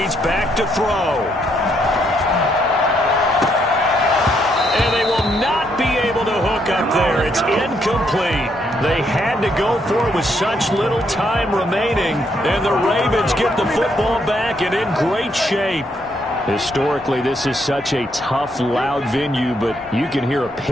back to throw. And they will not be able to hook up there. It's incomplete. They had to go for it with such little time remaining, and the Ravens get the football back and in great shape. Historically, this is such a tough, loud venue, but you can hear a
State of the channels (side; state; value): both; normal; correlation 0.74